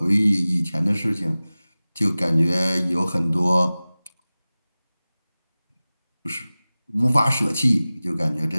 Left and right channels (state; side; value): inverted; both; correlation -0.98